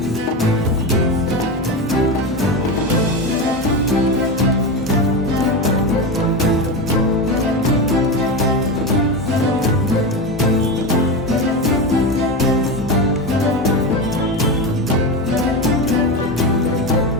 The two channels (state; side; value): normal; both; correlation 0.18